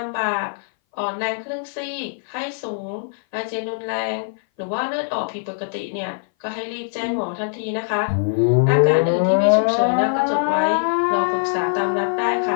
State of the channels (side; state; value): right; silent; 59 dB below the other